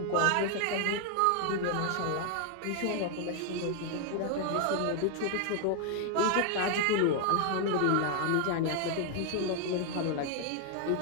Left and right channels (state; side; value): different; both; correlation 0.00